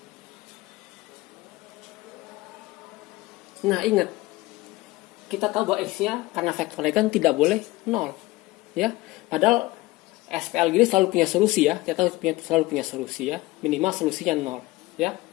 Nah, ingat. Kita tahu bahwa X-nya karena vektornya kan tidak boleh 0. Ya, padahal SPL gini selalu punya solusi ya. Kita selalu punya solusi ya. Minimal solusinya 0 ya.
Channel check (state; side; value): quieter; right; 19.9 dB